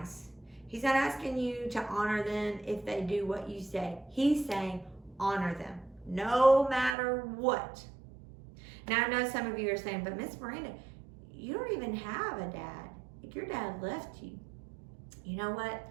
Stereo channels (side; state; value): left; drops out; at 7.0 s